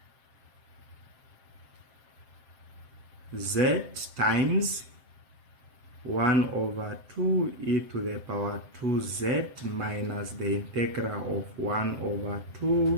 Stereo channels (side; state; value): left; late; 7.7 ms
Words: z times 1 over 2 e to the power 2z minus the integral of 1 over